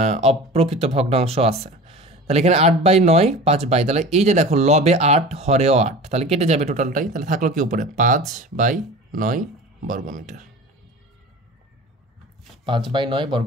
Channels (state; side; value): normal; both; correlation 0.37